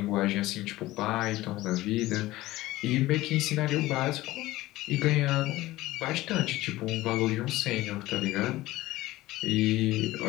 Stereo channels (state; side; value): quieter; right; 17.4 dB